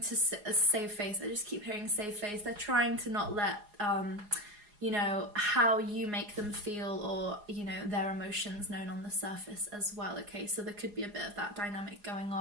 save face. I just keep hearing save face. They're trying to not let you know, how you make them feel, or, you know, their emotions known on the surface as well, okay? So there could be a bit of that dynamic going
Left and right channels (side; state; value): left; late; 4.8 ms